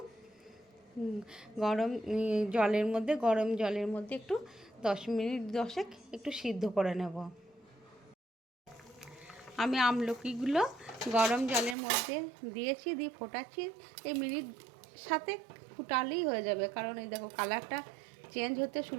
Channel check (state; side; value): drops out; left; at 11.8 s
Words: গরম জলের মধ্যে একটু 10 মিনিট একটু সিদ্ধ করে নেব। আমি আমলকিগুলো গরম জলের মধ্যে দিয়েছি, দিয়ে ফোটাচ্ছি। এই মিনিট সাথে ফুটালেই হয়ে যাবে, কারণ এই দেখো কালারটা চেঞ্জ হতে